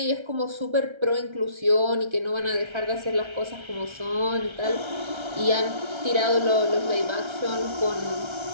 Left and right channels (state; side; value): late; left; 1.3 ms